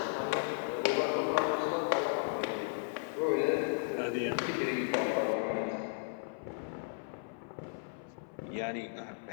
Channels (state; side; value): silent; right; 54 dB below the other